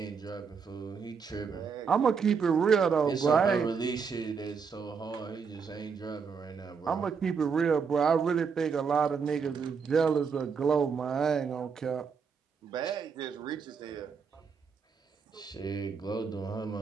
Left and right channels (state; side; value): quieter; left; 5.9 dB